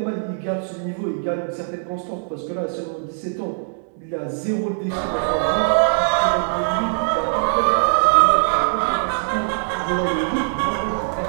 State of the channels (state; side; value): silent; left; digital silence